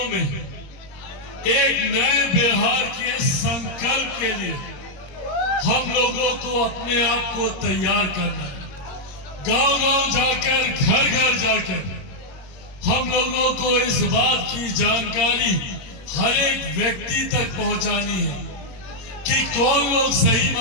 में एक नए बिहार के संकल्प के लिए हम लोगों को अपने आप को तैयार करना है। गांव-गांव जाकर, घर-घर जाकर हम लोगों को इस बात की जानकारी हर एक व्यक्ति तक पहुंचानी है कि कौन लोग सही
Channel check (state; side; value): late; right; 22 ms